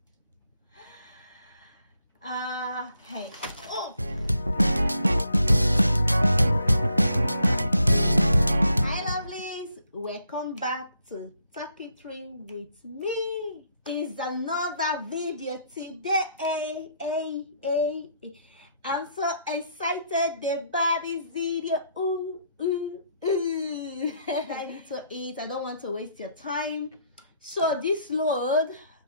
Okay. Oh. Hi lovelies, welcome back to Talk It Through with me. It's another video today. I'm so excited about this video. I need to eat. I don't want to waste your time. So this load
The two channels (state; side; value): inverted; both; correlation -0.73